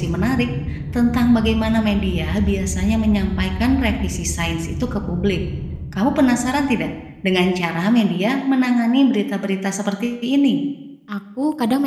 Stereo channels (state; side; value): identical; both; correlation 1.00